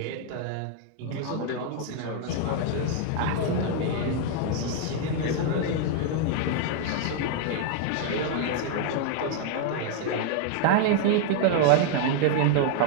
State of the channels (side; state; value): both; different; correlation 0.00